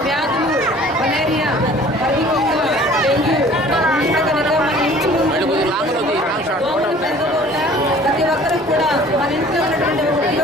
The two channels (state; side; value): normal; both; correlation 0.50